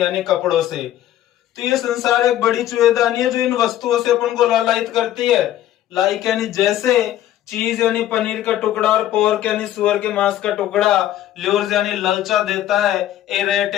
यानी कपड़ों से। तो ये संसार एक बड़ी चूहेदानी है जो इन वस्तुओं से अपन को लालायित करती है। लाइक यानी जैसे, चीज यानी पनीर का टुकड़ा, और पोर्क यानी सुअर के मांस का टुकड़ा, ल्यूर्स यानी ललचा देता है, ए रेट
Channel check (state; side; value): quieter; right; 12.7 dB